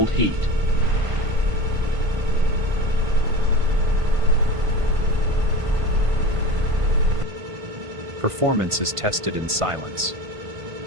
heat. Performance is tested in silence.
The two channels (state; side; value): late; left; 1.5 ms